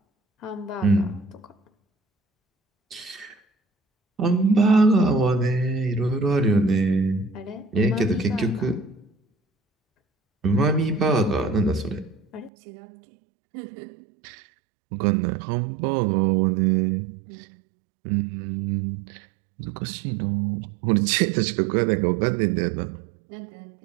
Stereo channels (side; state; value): left; drops out; at 12.5 s